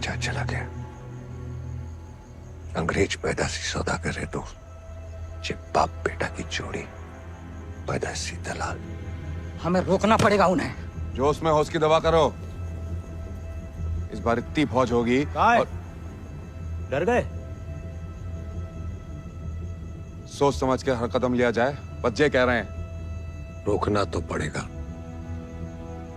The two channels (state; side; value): identical; both; correlation 1.00